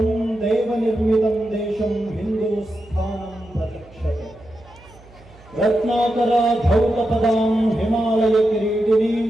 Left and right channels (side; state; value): right; noise; hum, 24 dB below the sound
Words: ದೇವ ನಿರ್ಮಿತಂ ದೇಶಂ ಹಿಂದೂಸ್ಥಾನಂ ಪ್ರತಿಕ್ಷತೆ ರತ್ನಾಕರ ಧೌತ ಪದಾಂ ಹಿಮಾಲಯ ಕಿರೀಟಿನೀಂ